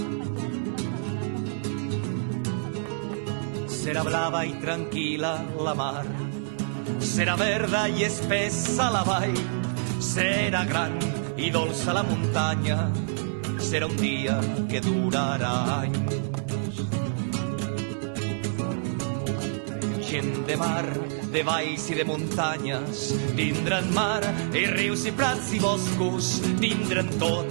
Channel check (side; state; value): left; silent; digital silence